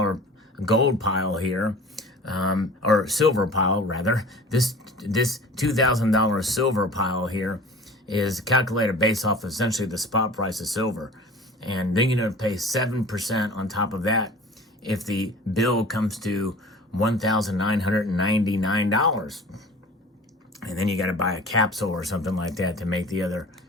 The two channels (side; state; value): both; normal; correlation 0.42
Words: gold pile here, or silver pile rather, this $2,000 silver pile here is calculated based off essentially the spot price of silver. And then you're going to pay 7% on top of that if the bill comes to $1,999. And then you got to buy a capsule or something like that to make the other